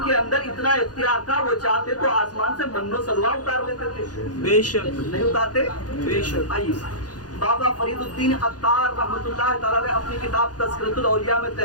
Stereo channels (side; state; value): right; late; 0.69 ms